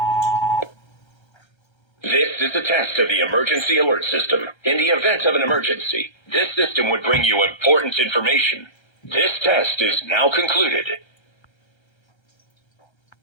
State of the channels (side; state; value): right; late; 1.3 ms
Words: This is a test of the emergency alert system. In the event of an emergency, this system would bring you important information. This test is now concluded.